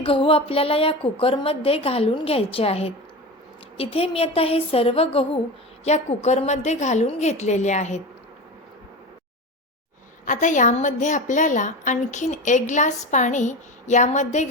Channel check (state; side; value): normal; both; correlation 0.26